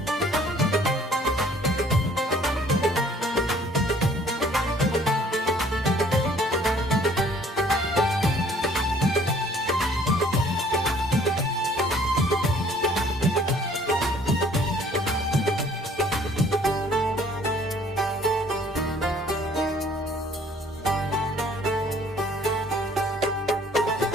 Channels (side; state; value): both; normal; correlation 0.57